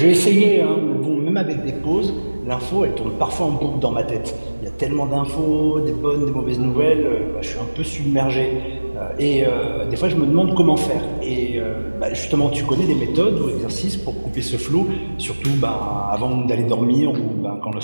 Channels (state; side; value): inverted; both; correlation -1.00